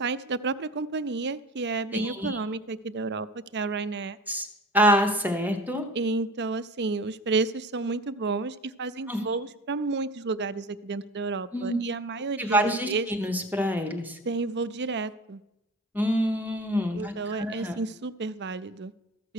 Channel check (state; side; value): normal; both; correlation 0.38